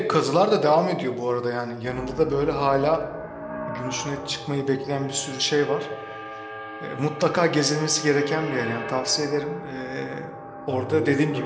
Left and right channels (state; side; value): identical; both; correlation 1.00